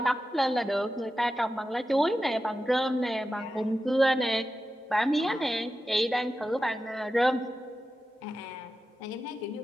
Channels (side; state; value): both; normal; correlation 0.92